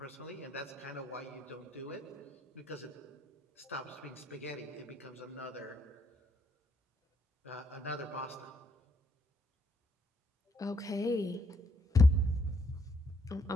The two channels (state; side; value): normal; both; correlation 0.72